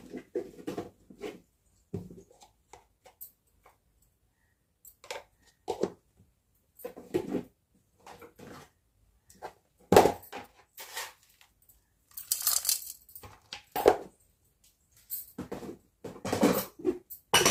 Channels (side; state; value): both; identical; correlation 1.00